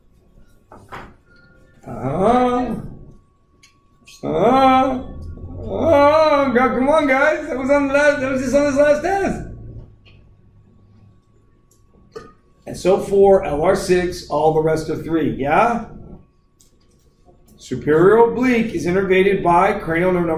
Come on, guys. That was just on this last test. And so 4, LR6, all the rest of 3. Yeah? Superior oblique is innervated by cranial nerve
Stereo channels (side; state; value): both; identical; correlation 1.00